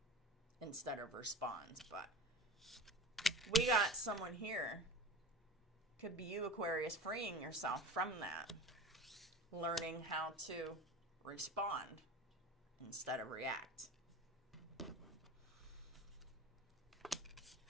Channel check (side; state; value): both; normal; correlation 0.33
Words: instead of responds. But we got someone here, could be you, Aquarius, freeing yourself from that, learning how to respond instead of react.